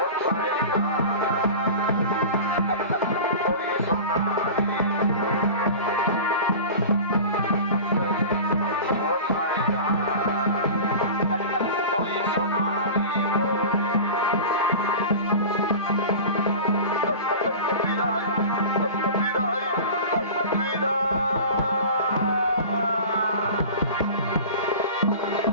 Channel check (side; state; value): both; inverted; correlation -0.35